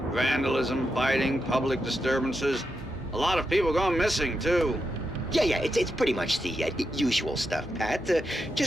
Vandalism, fighting, public disturbances. A lot of people gone missing, too. Yeah, it's pretty much the usual stuff, Pat.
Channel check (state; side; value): normal; both; correlation 0.86